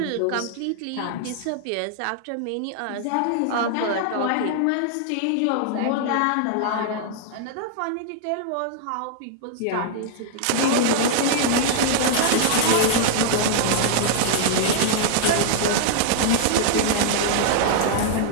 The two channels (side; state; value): both; different; correlation 0.00